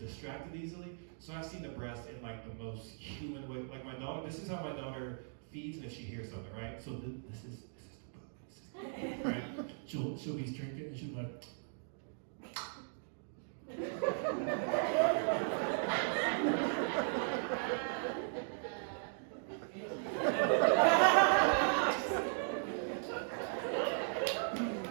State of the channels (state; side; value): silent; left; digital silence